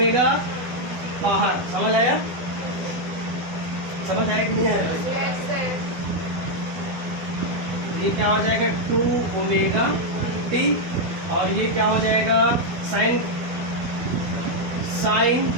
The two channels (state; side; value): late; left; 12 ms